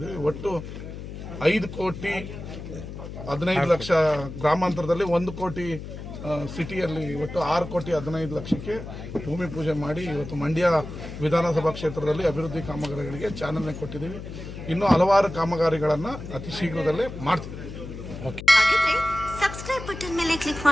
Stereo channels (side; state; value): left; noise; hum, 10 dB below the sound